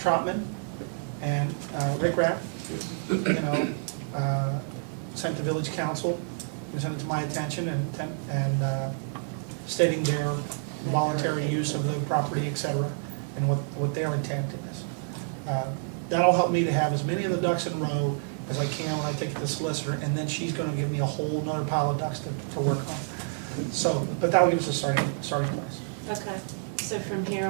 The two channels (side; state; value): left; silent; digital silence